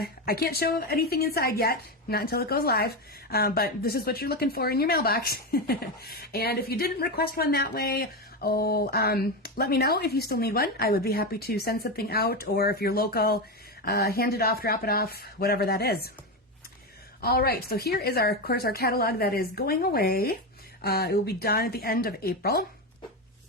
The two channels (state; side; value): normal; both; correlation 0.14